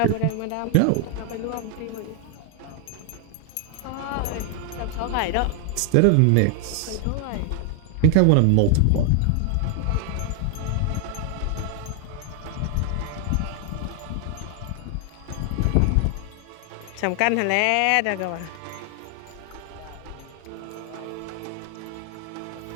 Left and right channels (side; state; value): both; different; correlation 0.00